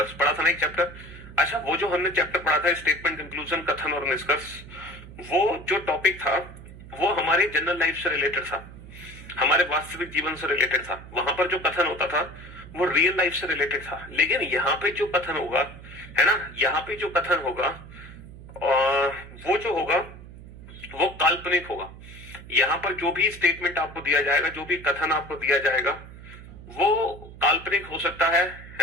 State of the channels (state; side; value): noise; right; hum, 16 dB below the sound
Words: पढ़ा था ना एक चैप्टर। अच्छा, वो जो हमने चैप्टर पढ़ा था स्टेटमेंट कंक्लूजन कथन और निष्कर्ष, वो जो टॉपिक था वो हमारे जनरल लाइफ से रिलेटेड था, हमारे वास्तविक जीवन से रिलेटेड था। वहां पर जो कथन होता था वो रियल लाइफ से रिलेटेड था। लेकिन यहाँ पे जो कथन होगा, है ना, यहाँ पे जो कथन होगा वो जो होगा वो काल्पनिक होगा। यहाँ पर जो भी स्टेटमेंट आपको दिया जाएगा, जो भी कथन आपको दिया जाएगा वो काल्पनिक हो सकता है